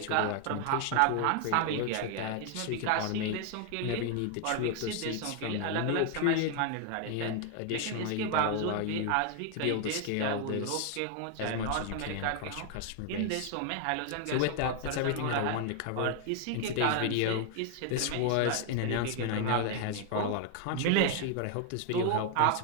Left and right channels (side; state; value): both; different; correlation 0.00